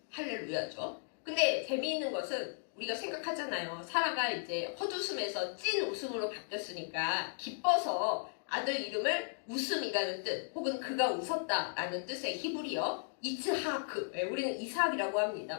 할렐루야죠. 근데 재미있는 것은 우리가 생각하잖아요. 사라가 이제 헛웃음에서 찐 웃음으로 바뀌었으니까 기뻐서 아들 이름을 웃음이라는 뜻 혹은 그가 웃었다라는 뜻의 히브리어 이츠하크 우리는 이삭이라고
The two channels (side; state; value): right; silent; digital silence